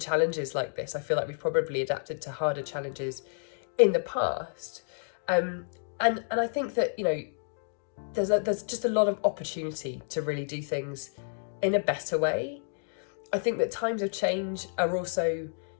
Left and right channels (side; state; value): right; silent; digital silence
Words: like this. I feel like we've probably adapted to harder challenges in the past, and I think that, you know, there's just a lot of opportunity to really do things in a better way. I think that times of change are also,